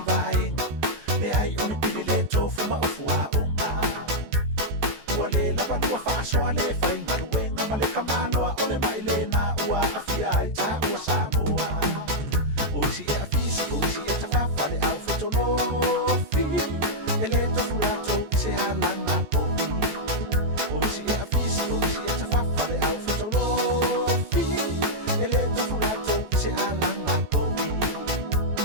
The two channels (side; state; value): left; late; 14 ms